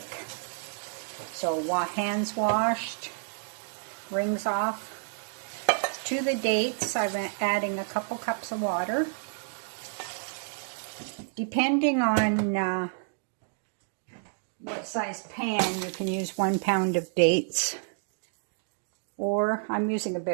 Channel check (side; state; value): left; silent; digital silence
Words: So hands washed, rings off. To the dates, I'm adding a couple cups of water. Depending on what size pan, you can use 1 pound of dates. Or I'm using a